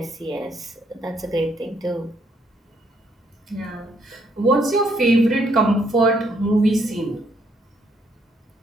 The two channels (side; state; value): both; normal; correlation 0.71